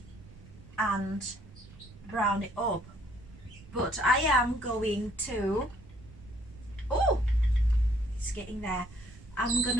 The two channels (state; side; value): noise; right; rumble, 20 dB below the sound